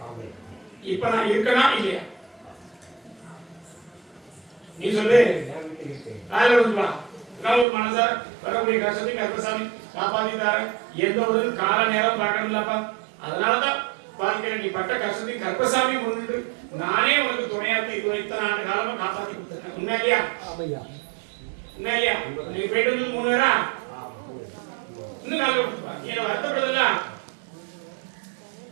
இப்ப நான் இருக்கனா இல்லையா? நீ சொல்லு. நான் ஒரு மனசா வரக்கூடிய கஷ்டத்தை கர்ப்பசாமி காப்பாத்தி தரேன். எந்த ஒரு கால நேரம் பார்க்கணும்லப்பா. அதனாலதான் வாழ்க்கையில நீ பட்ட கஷ்டத்தையும் கர்ப்பசாமி முன்னிட்டு நானே உனக்கு துணையாத்து இத்தனை ஆண்டு காலமா காப்பாத்தி கொடுத்துருக்கேன். உண்மை இல்லையா? உண்மை இல்லையா? நீ போயிட்டு வந்து 3 பேரா இன்னும் நாள் கொடுத்துப்பா. என்ன வருத்தப்படுதுல்ல?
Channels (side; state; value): left; drops out; at 7.7 s